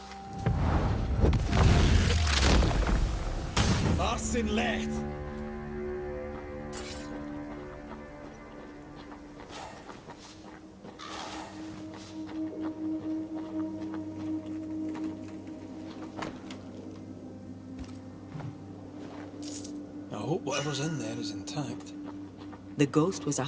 Arsen left! I hope whatever's in there is intact. The ghost was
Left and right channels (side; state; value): both; identical; correlation 1.00